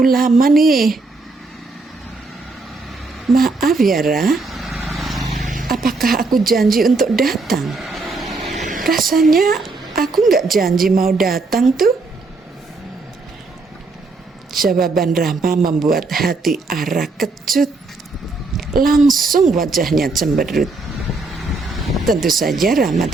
lama nih." "Maaf ya Ra, apakah aku janji untuk datang? Rasanya aku nggak janji mau datang tuh." Jawaban Rama membuat hati Ara kecut. Langsung wajahnya cemberut. Tentu saja Rama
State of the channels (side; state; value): left; quieter; 3.6 dB